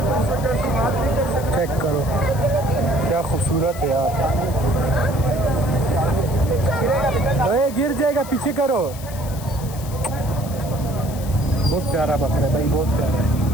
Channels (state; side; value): noise; left; hiss, 16 dB below the sound